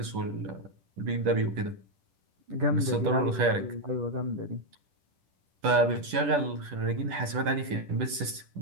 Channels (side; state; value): left; late; 10 ms